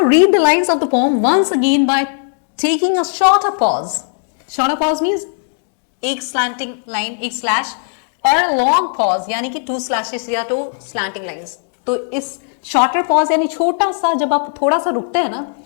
read the lines of the poem once again by taking a shorter pause. Shorter pause means एक स्लैंटिंग लाइन, एक स्लैश, और लॉन्ग पॉज यानी कि 2 स्लैशेस या 2 स्लैंटिंग लाइंस। तो इस शॉर्टर पॉज यानी छोटा सा, जब आप थोड़ा सा रुकते हैं ना,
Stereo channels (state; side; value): silent; right; digital silence